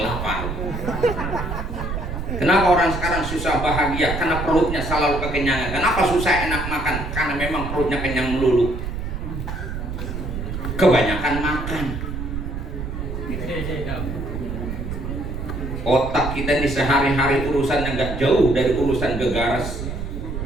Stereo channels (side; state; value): right; noise; rumble, 5 dB below the sound